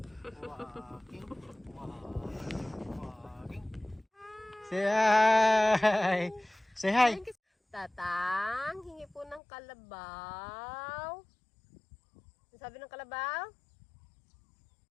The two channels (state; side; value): drops out; right; at 9.4 s